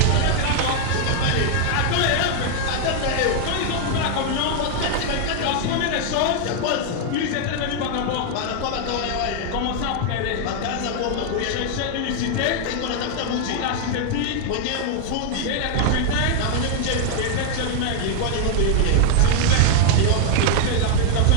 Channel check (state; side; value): different; both; correlation 0.00